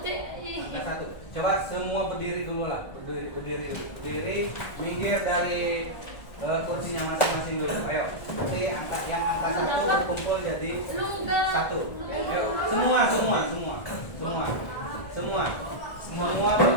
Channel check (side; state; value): right; late; 1.5 ms